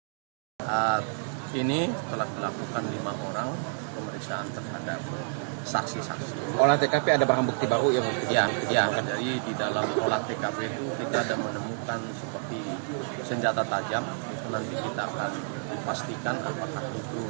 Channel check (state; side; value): silent; left; 58 dB below the other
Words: Saat ini telah dilakukan 5 orang pemeriksaan terhadap saksi-saksi. Olah TKP ada barang bukti baru ya? Ya, jadi di dalam olah TKP itu kita ada menemukan seperti senjata tajam. Itu nanti kita akan pastikan apakah